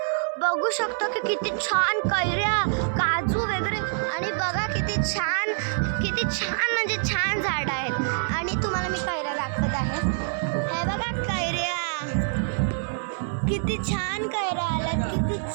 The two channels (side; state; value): left; silent; 61 dB below the other